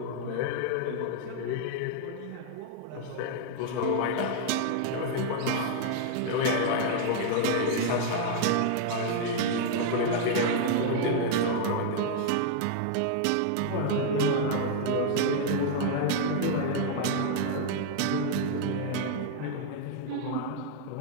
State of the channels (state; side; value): different; both; correlation 0.00